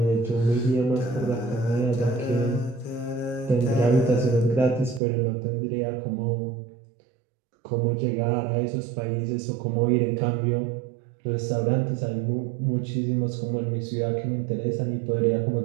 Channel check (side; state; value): left; drops out; at 5.0 s